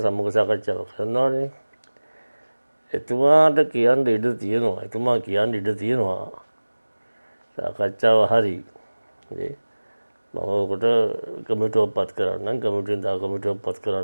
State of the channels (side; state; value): both; inverted; correlation -1.00